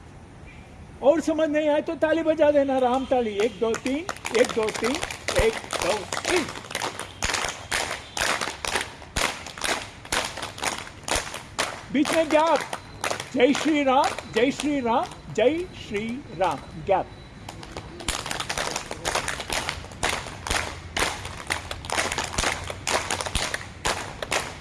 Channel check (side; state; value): both; identical; correlation 1.00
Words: और समझ नहीं आए तो ताली बजा देना, राम ताली। 1 2 3, 1 2 3, 1 2 3। बीच में गैप। जय श्री राम, जय श्री राम, जय श्री राम, गैप।